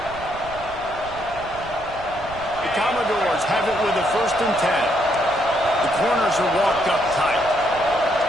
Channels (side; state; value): right; noise; rumble, 16 dB below the sound